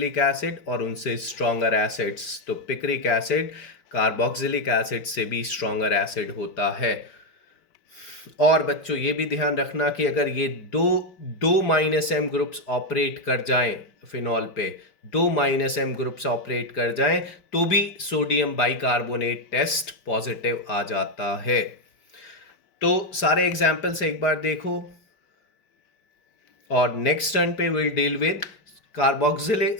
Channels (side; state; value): right; late; 5.3 ms